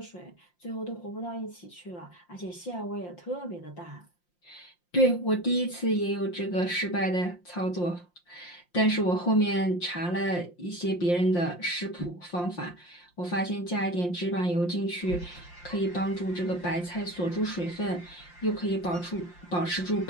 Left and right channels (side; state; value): right; late; 5.7 ms